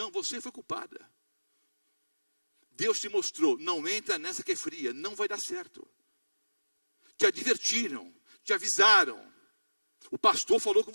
você foi culpada. Deus te mostrou: não entra nessa que é fria, não vai dar certo. Te advertiram, te avisaram. O pastor falou com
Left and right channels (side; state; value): both; inverted; correlation -1.00